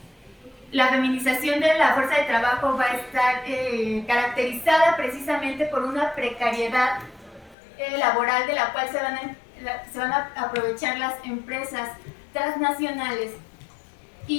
La feminización de la fuerza de trabajo va a estar caracterizada precisamente por una precariedad laboral de la cual se van a aprovechar las empresas transnacionales.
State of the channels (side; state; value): right; drops out; at 7.6 s